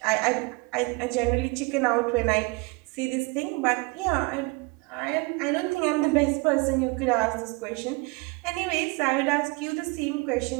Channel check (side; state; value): left; quieter; 27.6 dB